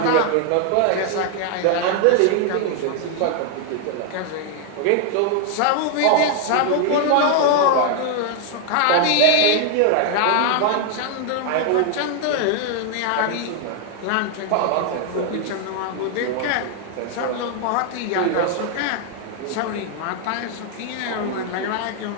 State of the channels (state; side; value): different; both; correlation 0.00